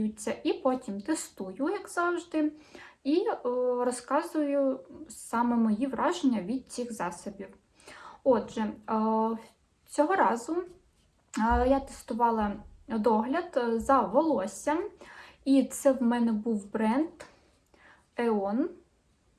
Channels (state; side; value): identical; both; correlation 1.00